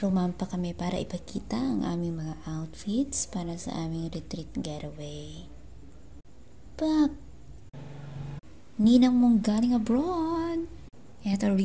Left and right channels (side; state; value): both; identical; correlation 1.00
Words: kami para ipakita ang aming mga outfits para sa aming retreat getaway. Pak! Ninang mong galing abroad! Eto,